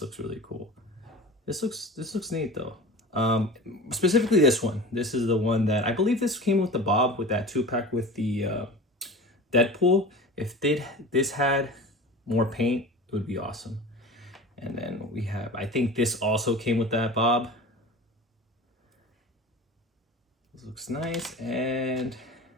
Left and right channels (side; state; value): both; normal; correlation 0.35